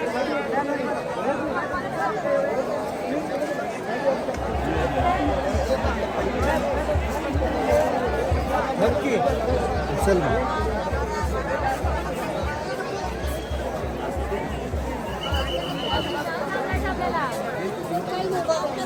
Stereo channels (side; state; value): both; identical; correlation 1.00